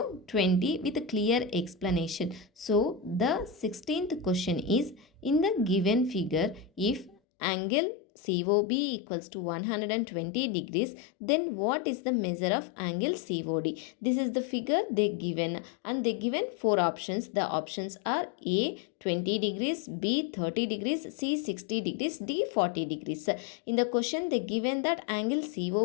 20 with a clear explanation. So the 16th question is, in the given figure, if angle COB equals to 120 degrees, then what is the measure of angle COD? This is the figure they given, and they given four options. The options are A 20 degrees, B 30 degrees, C 60 degrees, D 40 degrees. In the question they given that angle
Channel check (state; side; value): drops out; right; at 7.2 s